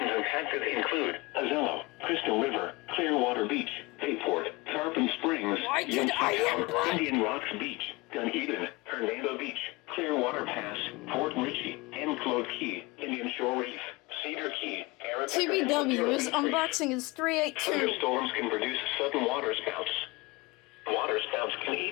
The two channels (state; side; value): quieter; right; 23.5 dB